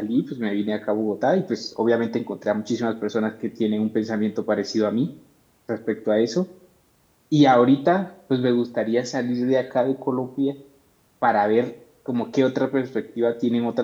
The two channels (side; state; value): both; identical; correlation 1.00